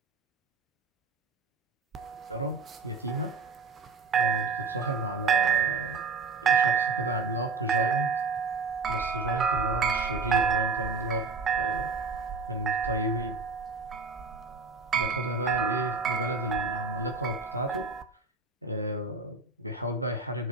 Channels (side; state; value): left; quieter; 4.3 dB